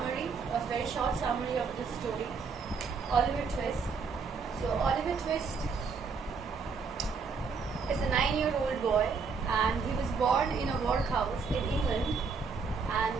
a very short summary of this story, Oliver Twist. So Oliver Twist is a 9-year-old boy, and he was born in a workhouse in England, and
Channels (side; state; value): left; quieter; 5.1 dB